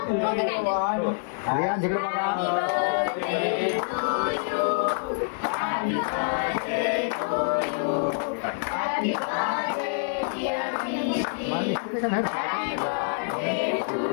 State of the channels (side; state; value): right; silent; digital silence